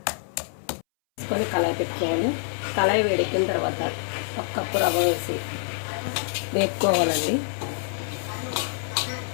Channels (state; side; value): silent; right; 61 dB below the other